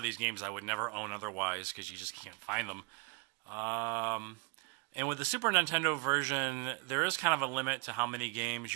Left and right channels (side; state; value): left; quieter; 29.2 dB